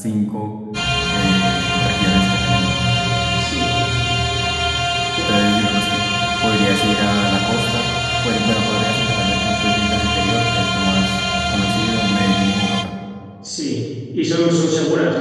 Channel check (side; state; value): both; identical; correlation 1.00